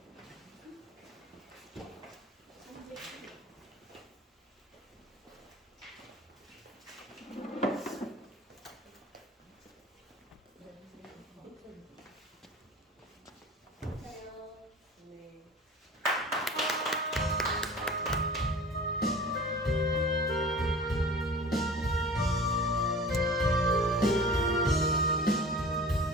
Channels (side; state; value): both; normal; correlation 0.40